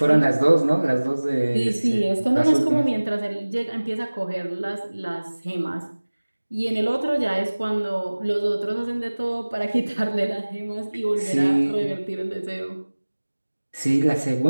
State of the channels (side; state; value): both; inverted; correlation -1.00